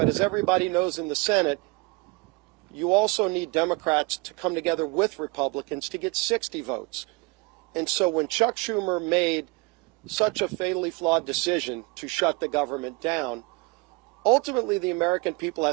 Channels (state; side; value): quieter; left; 27.5 dB